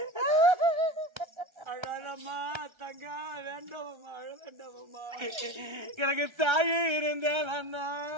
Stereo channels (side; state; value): left; late; 1.3 ms